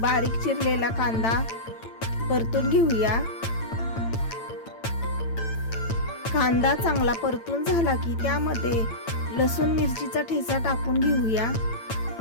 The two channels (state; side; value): late; right; 8.9 ms